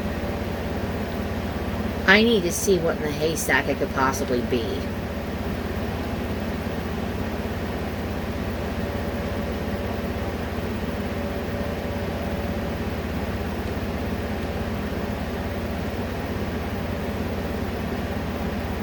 I need to see what in the haystack it could possibly be.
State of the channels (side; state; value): both; identical; correlation 1.00